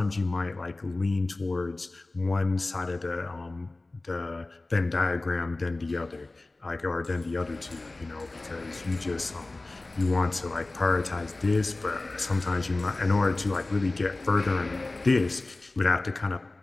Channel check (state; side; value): quieter; right; 3.0 dB